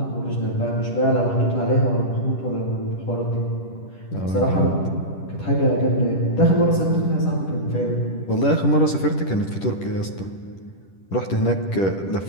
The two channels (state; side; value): late; right; 10 ms